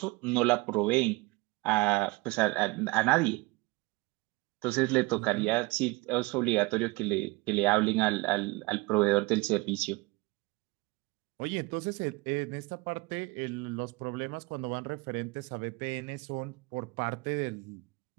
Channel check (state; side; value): quieter; left; 24.3 dB